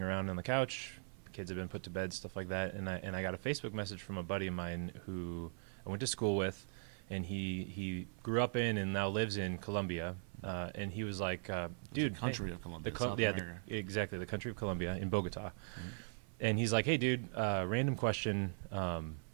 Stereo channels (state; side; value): silent; left; 51 dB below the other